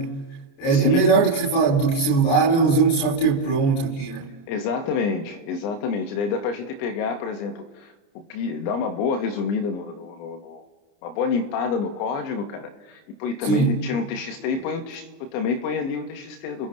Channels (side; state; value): right; late; 30 ms